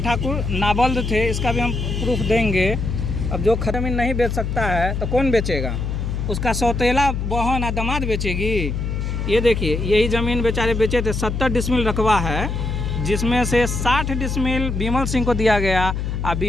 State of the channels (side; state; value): left; noise; hum, 2 dB below the sound